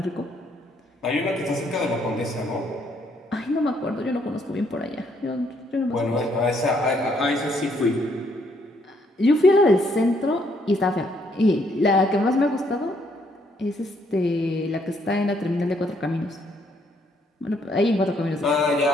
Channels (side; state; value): both; normal; correlation 0.70